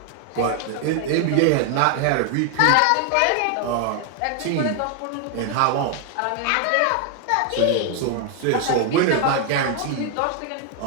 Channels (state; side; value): different; both; correlation 0.00